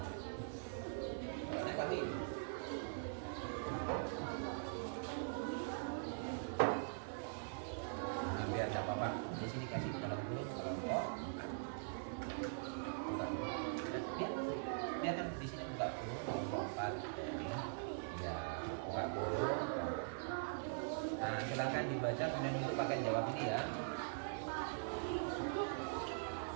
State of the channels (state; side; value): silent; left; digital silence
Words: biar tak apa-apa. Di sini kasih dalam dulu kelompok. Biar kan di sini buka dulu kelompok 4. Ya, buka dulu. Nah, silakan dibaca kemudian untuk pakai jawab ini ya.